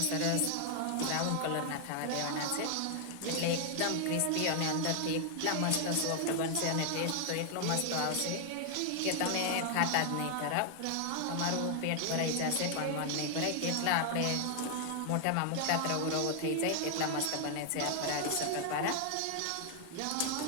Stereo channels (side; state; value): both; different; correlation 0.00